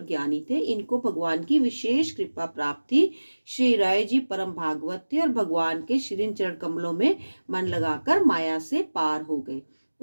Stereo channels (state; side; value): inverted; both; correlation -1.00